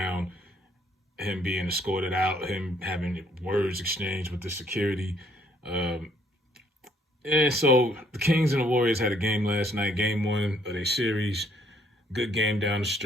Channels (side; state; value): both; normal; correlation 0.66